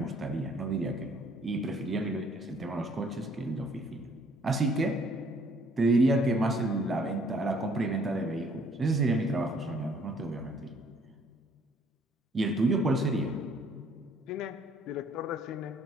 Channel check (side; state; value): both; normal; correlation 0.62